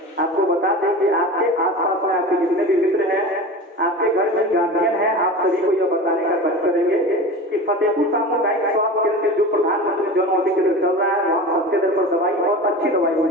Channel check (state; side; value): normal; both; correlation 0.32